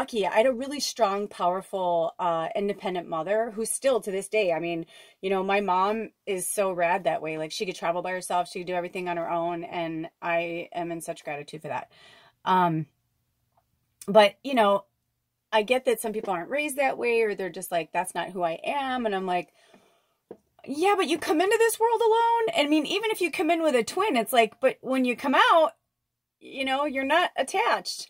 I had a really strong, powerful, independent mother who's still to this day. I mean, my mom is so rad that way. Like, she could travel by herself. She could do everything on her own. And I am in such gratitude for that. But, I get that some people aren't raised that way, or they're just like, that's not who I am. And I'm like, yeah, but you come into this world alone. And I mean, even if you come in with a twin, it's like, but when you come out, you're not attached.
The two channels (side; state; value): both; identical; correlation 1.00